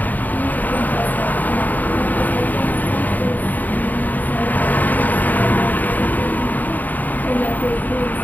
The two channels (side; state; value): right; late; 0.084 ms